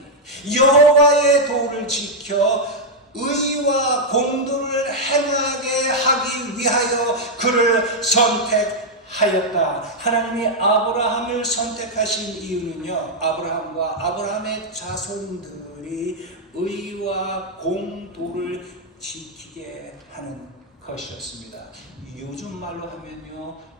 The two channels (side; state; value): both; normal; correlation -0.01